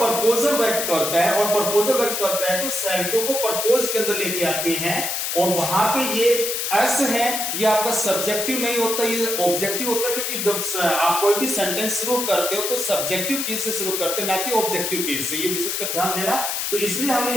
व्यक्त करता है, और प्रपोजल व्यक्त करता है तो सेल्टो को प्रपोज के अंदर लेके आते हैं, और वहां पे ये एस है, ये आपका सब्जेक्टिव नहीं होता, ये ऑब्जेक्टिव होता है। क्योंकि जब आप कोई भी सेंटेंस शुरू करते हो तो सब्जेक्टिव केस से शुरू करते हैं, ना कि ऑब्जेक्टिव केस से। ये विशेष कर ध्यान देना। तो इसलिए हमने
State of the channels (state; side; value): noise; left; hiss, 1 dB below the sound